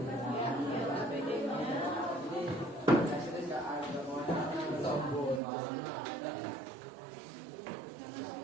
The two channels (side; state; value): left; drops out; at 5.4 s